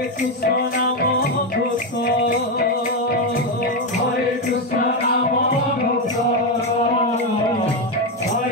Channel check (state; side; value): normal; both; correlation 0.08